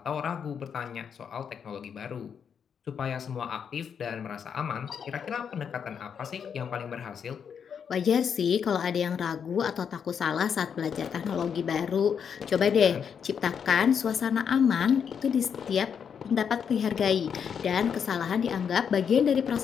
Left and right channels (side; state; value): right; quieter; 7.3 dB